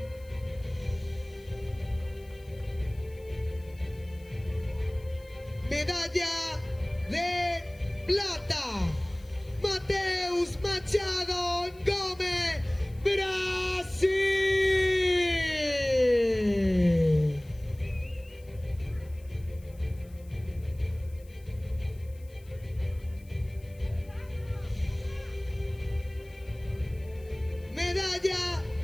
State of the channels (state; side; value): noise; left; hiss, 27 dB below the sound